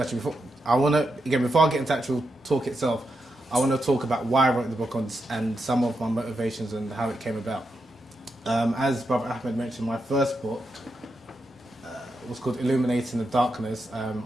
before I get into actual talk itself, I want to talk about why I wrote the book and some of my motivations and how it came about. As Brother Ahmed mentioned, my first book was called Illuminating the Blackness.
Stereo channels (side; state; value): both; normal; correlation 0.85